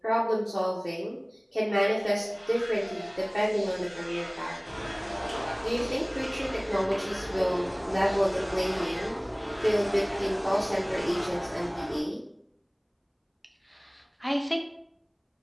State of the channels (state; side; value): identical; both; correlation 1.00